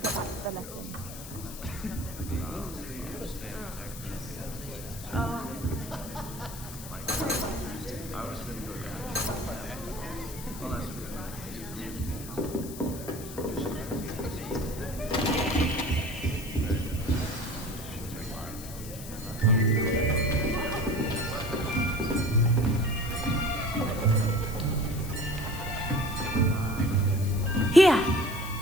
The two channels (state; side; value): noise; left; hiss, 13 dB below the sound